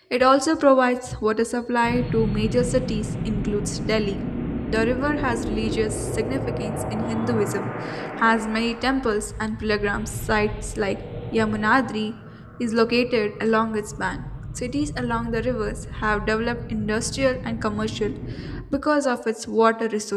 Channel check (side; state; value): both; identical; correlation 1.00